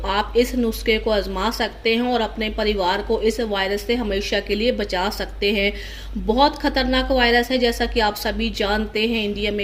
आप इस नुस्खे को आजमा सकते हैं और अपने परिवार को इस वायरस से हमेशा के लिए बचा सकते हैं। बहुत खतरनाक वायरस है, जैसा कि आप सभी जानते हैं, इंडिया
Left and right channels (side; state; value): both; identical; correlation 1.00